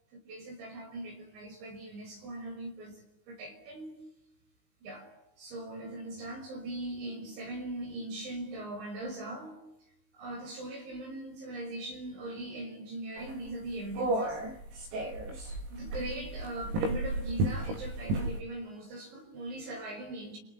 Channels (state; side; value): late; left; 19 ms